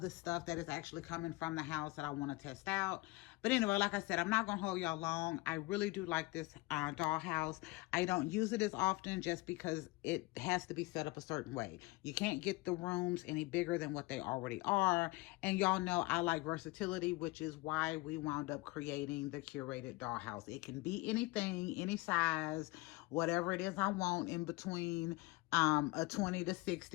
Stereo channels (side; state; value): right; quieter; 22.1 dB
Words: the stuff that is actually coming from the house that I want to test out. But anyway, like I said, I'm not going to hold y'all long. I really do like this dollhouse. I don't use it as often just because it has to be set up a certain way. You can't get the rooms any bigger than what they already are. And y'all know I like versatility, which is why we wound up creating the Curated Dollhouse. It can be anything, any size, whatever it is I want in between a 20 to